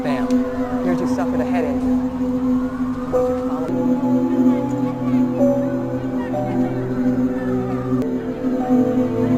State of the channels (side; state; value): both; identical; correlation 1.00